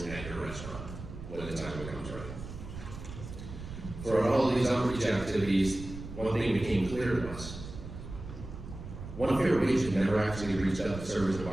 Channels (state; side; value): noise; right; rumble, 11 dB below the sound